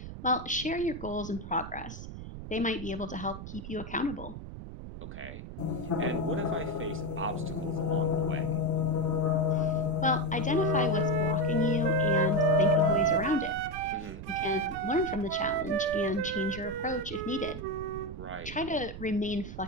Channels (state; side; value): noise; right; rumble, 10 dB below the sound